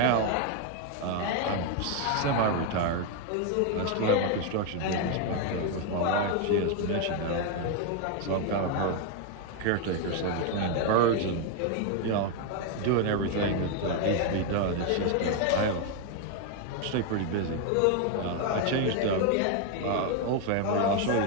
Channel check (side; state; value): both; different; correlation 0.01